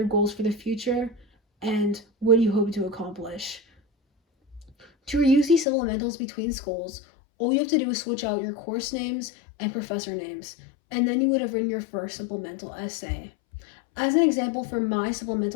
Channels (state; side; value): drops out; right; at 5.7 s